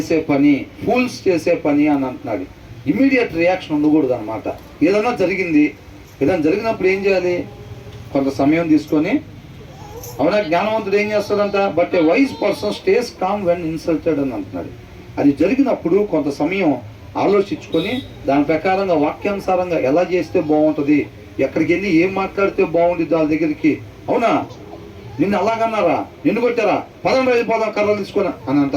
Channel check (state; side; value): identical; both; correlation 1.00